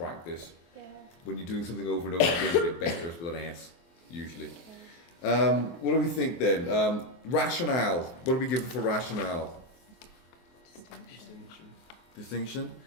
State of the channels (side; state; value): right; late; 23 ms